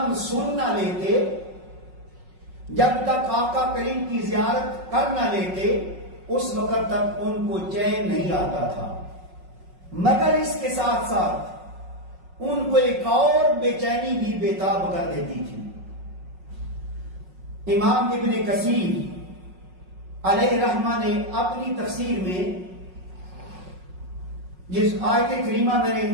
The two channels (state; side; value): late; left; 5.5 ms